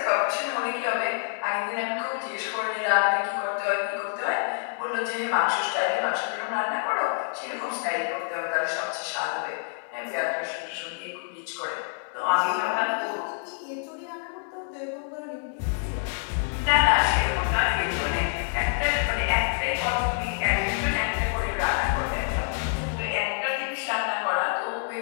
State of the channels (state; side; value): silent; right; 60 dB below the other